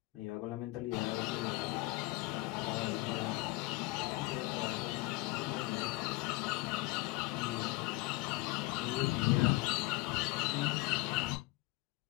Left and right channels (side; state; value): right; quieter; 21.4 dB